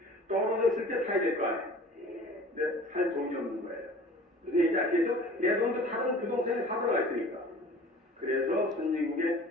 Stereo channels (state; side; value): normal; both; correlation 0.45